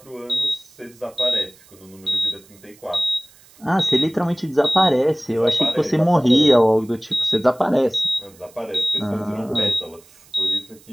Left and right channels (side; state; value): right; noise; hiss, 27 dB below the sound